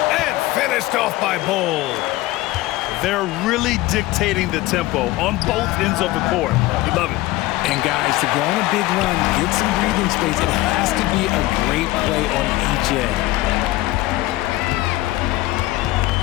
And finished off by Bol. They're really dictating the tempo on both ends of the court. You love it. And guys, to go on a big run, get some breathing space, it has to be a great play on each end.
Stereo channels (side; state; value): right; quieter; 18.2 dB